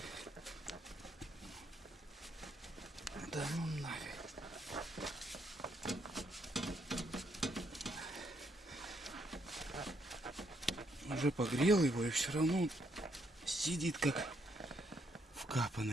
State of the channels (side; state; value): both; normal; correlation 0.74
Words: Да ну нафиг. Уже погрел его и все равно сидит как